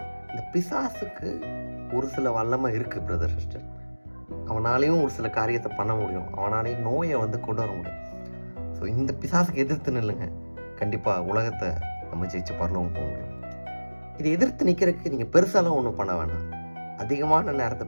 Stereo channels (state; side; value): inverted; both; correlation -1.00